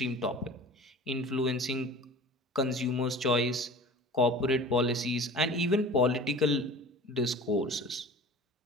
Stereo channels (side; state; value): both; normal; correlation 0.41